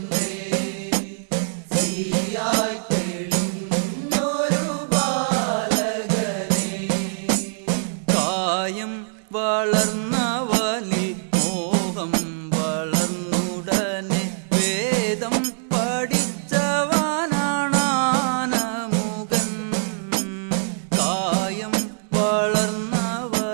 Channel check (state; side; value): silent; left; 62 dB below the other